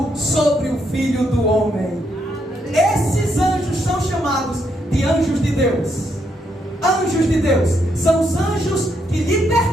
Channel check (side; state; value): both; normal; correlation 0.77